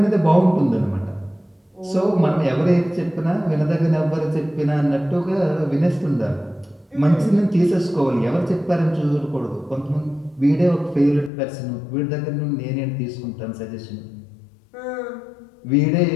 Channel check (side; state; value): right; drops out; at 11.3 s